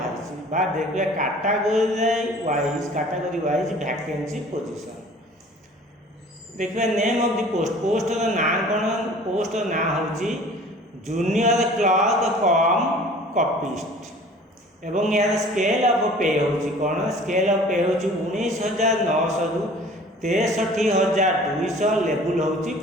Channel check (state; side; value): normal; both; correlation 0.47